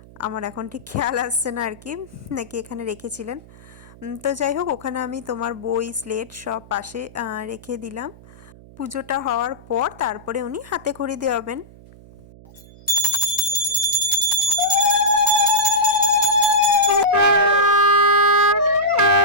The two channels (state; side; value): noise; right; hum, 22 dB below the sound